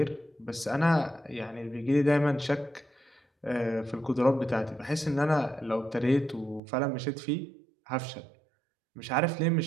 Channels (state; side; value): drops out; left; at 6.6 s